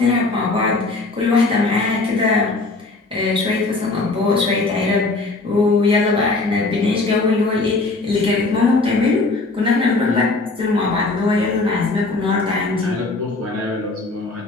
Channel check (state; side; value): quieter; right; 3.4 dB